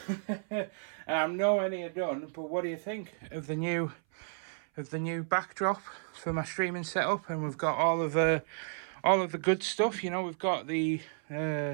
And I'm nowhere near done, but what do you think of the new backdrop for my streaming setup? And we've got all of the good stuff, you know. We've got the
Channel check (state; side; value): silent; left; 56 dB below the other